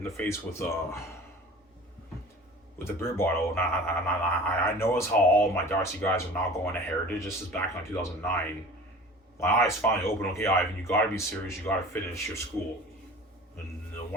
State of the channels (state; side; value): normal; both; correlation 0.41